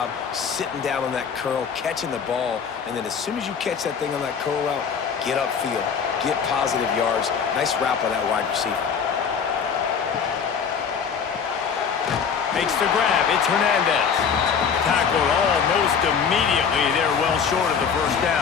sitting down on that curl, catching the ball, and then as soon as you catch that thing on that curl route, get upfield, get positive yards. Nice route by that wide receiver. Makes the grab. It's Hernandez. Tackled almost immediately. They're well short of the 1st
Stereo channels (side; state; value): right; quieter; 6.6 dB